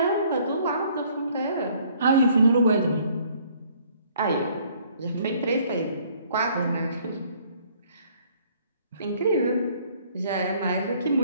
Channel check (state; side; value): inverted; both; correlation -0.61